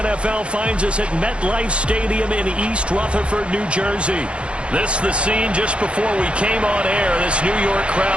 finds us at MetLife Stadium in East Rutherford, New Jersey. This the scene just before we came on air. This New York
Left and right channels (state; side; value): late; left; 0.059 ms